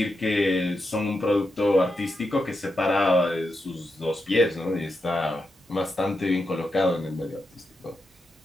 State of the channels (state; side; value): normal; both; correlation 0.86